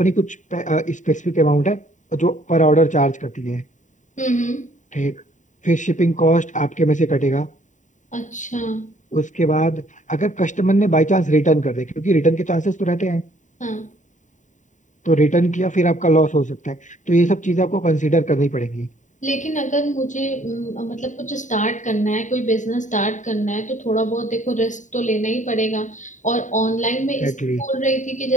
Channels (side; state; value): right; late; 0.36 ms